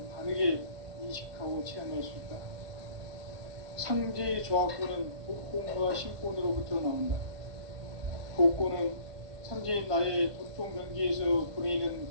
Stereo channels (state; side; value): late; left; 1.2 ms